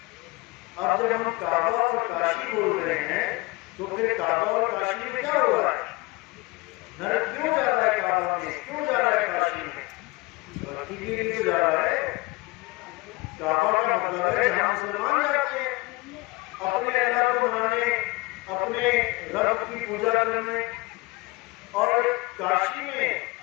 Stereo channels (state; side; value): quieter; right; 22.8 dB